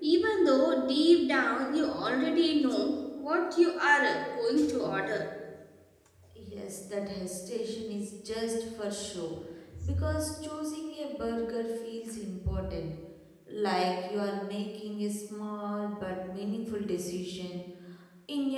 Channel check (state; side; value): identical; both; correlation 1.00